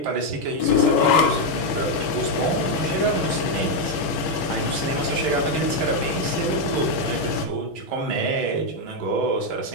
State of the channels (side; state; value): right; late; 6.3 ms